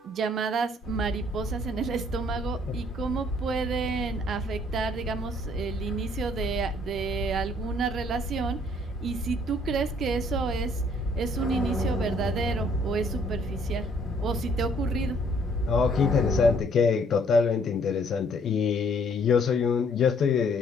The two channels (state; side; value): normal; both; correlation 0.62